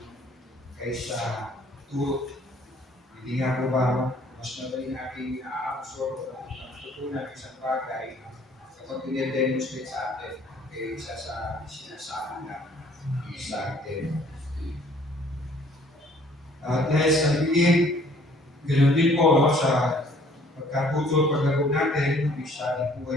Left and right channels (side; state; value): both; normal; correlation 0.58